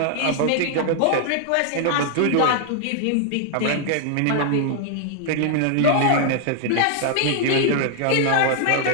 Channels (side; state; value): both; different; correlation 0.00